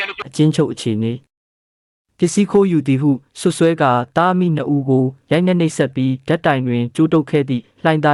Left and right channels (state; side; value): identical; both; correlation 1.00